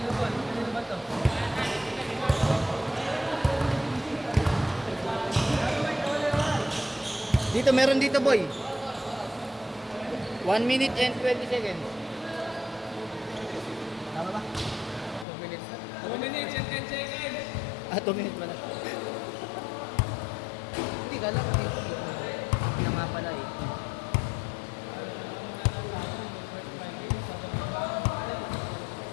Dito, meron dito boy. 1 minute and 20 seconds. Tama ba? 2 minutes. 2 minutes and 10 seconds. 2 minutes ba na? Hindi, kala ko dito. Hindi na nga pala eh.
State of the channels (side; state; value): right; drops out; at 15.2 s